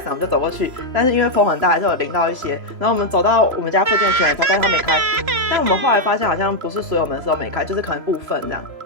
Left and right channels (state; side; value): late; left; 3.0 ms